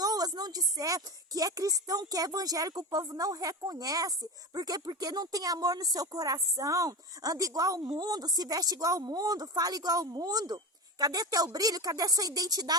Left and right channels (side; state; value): both; normal; correlation 0.23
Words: não disser que é cristão, que é evangélico, o povo não reconhece. Por quê? Porque não tem amor no seu coração, anda igual ao mundo, se veste igual ao mundo, fala igual ao mundo. Cadê teu brilho? Cadê sua